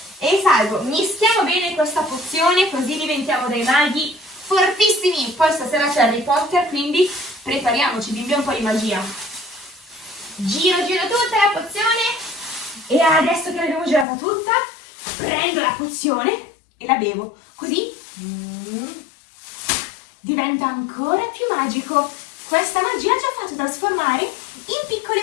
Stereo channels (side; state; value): right; drops out; at 14.1 s